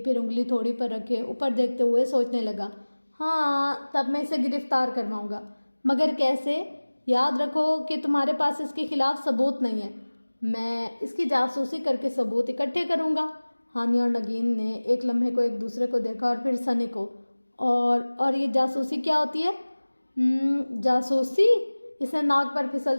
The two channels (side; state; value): both; inverted; correlation -1.00